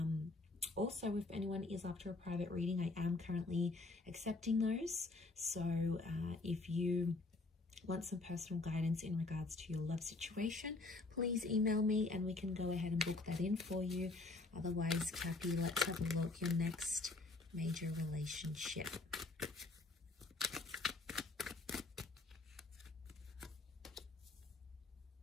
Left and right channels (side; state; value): right; quieter; 3.4 dB